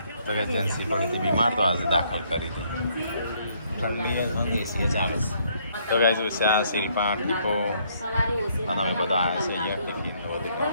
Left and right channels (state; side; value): inverted; both; correlation -0.68